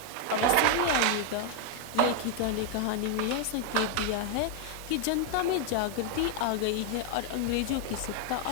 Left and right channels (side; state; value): both; different; correlation 0.01